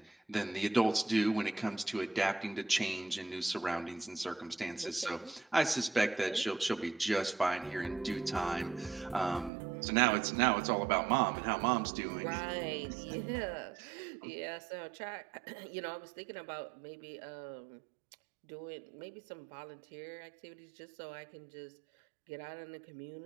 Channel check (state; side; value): drops out; left; at 9.5 s